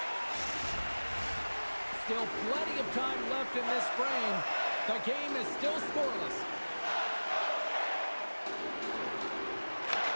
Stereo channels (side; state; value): both; inverted; correlation -1.00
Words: Still plenty of time left in this frame. The game is still scoreless.